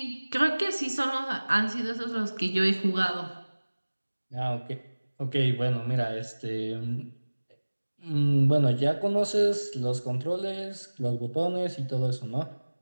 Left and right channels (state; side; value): inverted; both; correlation -1.00